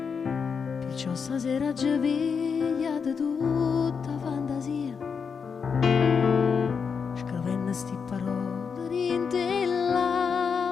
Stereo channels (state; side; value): quieter; right; 6.0 dB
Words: Perciò stasera ci piglia di tutta fantasia, scrivendo sti parole rinte